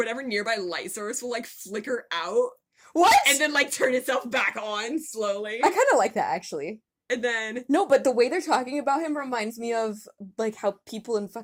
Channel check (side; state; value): both; identical; correlation 1.00